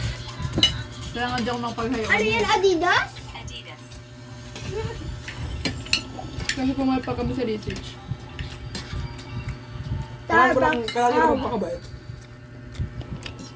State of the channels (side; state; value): both; identical; correlation 1.00